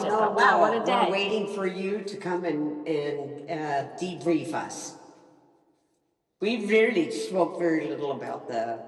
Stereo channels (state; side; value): identical; both; correlation 1.00